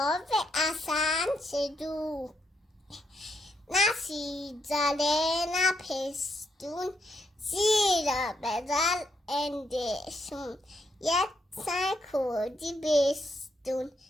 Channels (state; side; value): normal; both; correlation 0.78